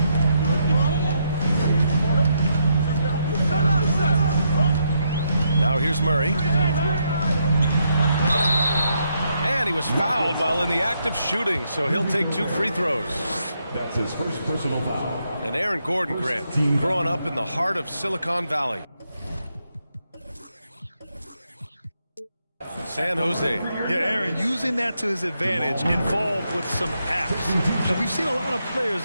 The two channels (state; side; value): inverted; both; correlation -0.78